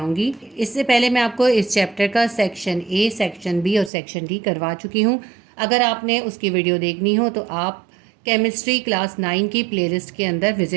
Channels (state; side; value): drops out; left; at 3.9 s